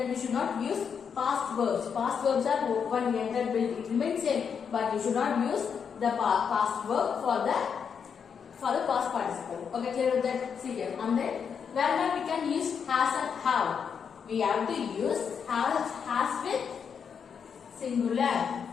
we should not use past verbs. Past verbs are open, entered, built. It remains same, but we should not use the past verb for the past participle. Okay, clear with that? See here. And then wherever we can use has and have, we have to use has with singular.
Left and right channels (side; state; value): right; quieter; 6.8 dB